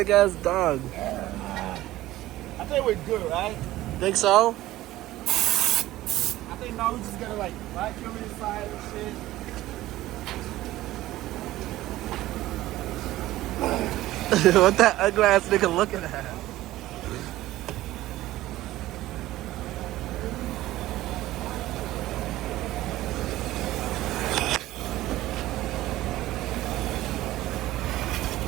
ass dog. I think we're good, right? Think so? I think now we're just gonna like vacuum inside and shit. What that ugly ass nigga looking at?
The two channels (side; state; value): left; quieter; 16.0 dB